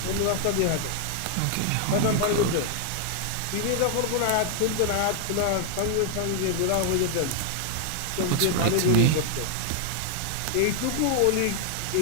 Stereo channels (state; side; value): different; both; correlation 0.00